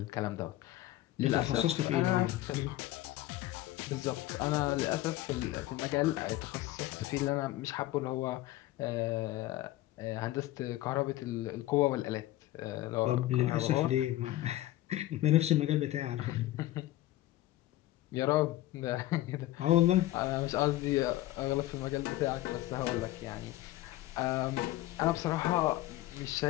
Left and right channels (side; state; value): right; quieter; 15.8 dB